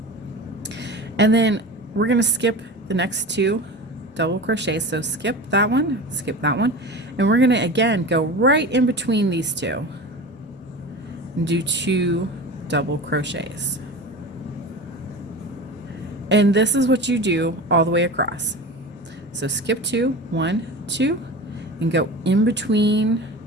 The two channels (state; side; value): normal; both; correlation 0.31